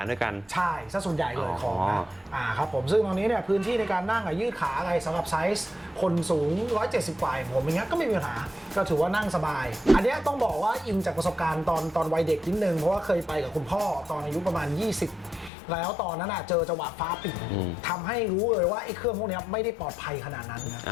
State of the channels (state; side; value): drops out; right; at 15.5 s